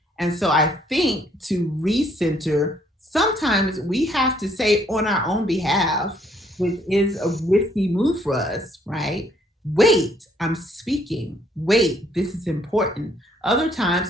And so I think to recenter, sometimes we have to say on our own behalf, which is a risky move for us, right? Wait, I'm speaking. Wait, this is important. Other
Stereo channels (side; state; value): both; normal; correlation 0.66